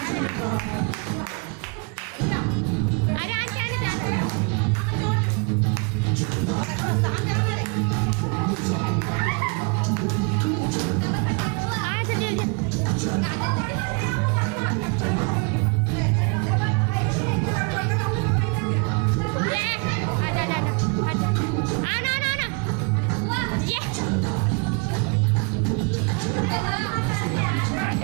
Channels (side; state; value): left; quieter; 33.8 dB